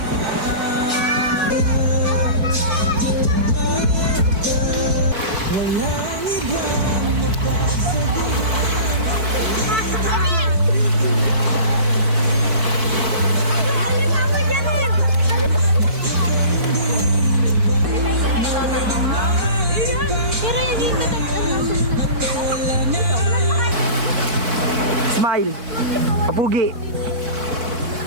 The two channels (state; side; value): late; left; 4.5 ms